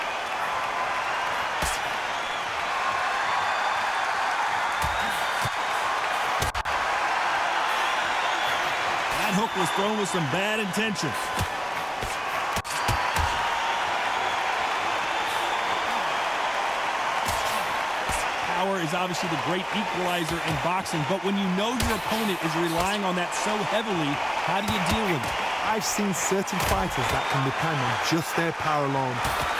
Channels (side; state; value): both; identical; correlation 1.00